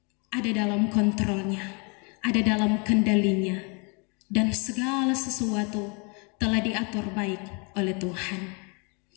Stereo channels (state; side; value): quieter; right; 33.2 dB